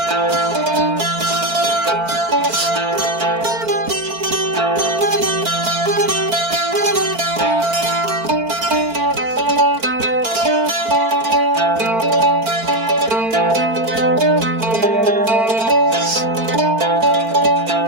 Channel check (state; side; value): late; left; 4.5 ms